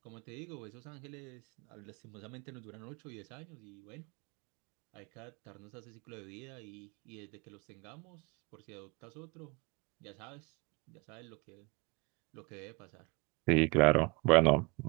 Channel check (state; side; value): quieter; left; 27.4 dB